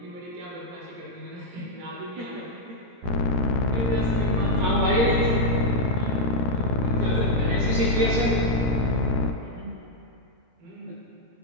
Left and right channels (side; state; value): left; late; 17 ms